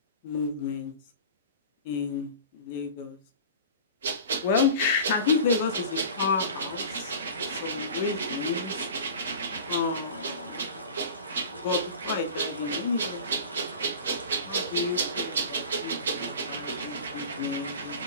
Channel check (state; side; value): inverted; both; correlation -0.37